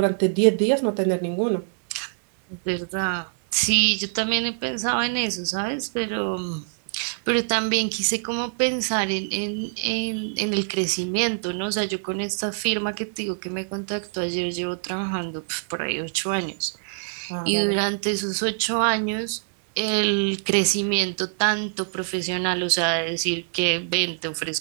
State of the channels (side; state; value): left; silent; digital silence